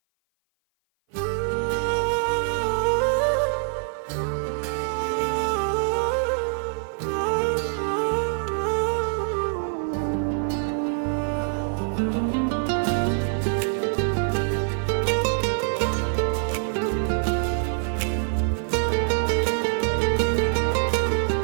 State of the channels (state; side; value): silent; left; 56 dB below the other